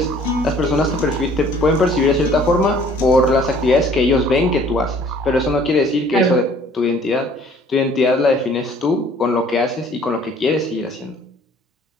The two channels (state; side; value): normal; both; correlation 0.55